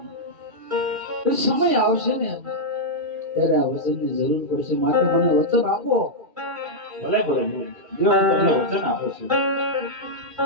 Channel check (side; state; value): left; late; 2.4 ms